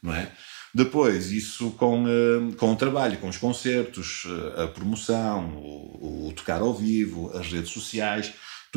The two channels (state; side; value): silent; left; 58 dB below the other